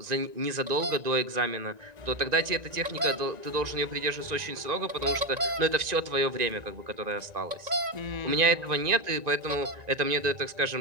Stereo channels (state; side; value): late; left; 1.9 ms